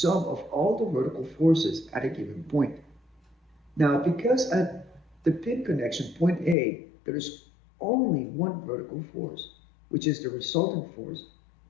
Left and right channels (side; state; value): right; drops out; at 6.6 s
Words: of all the vertical forces at a given point. Now, because at the pin connection point A, there is only one vertical force, which is the resultant force,